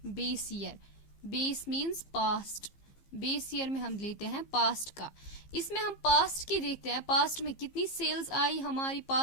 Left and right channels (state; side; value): late; right; 15 ms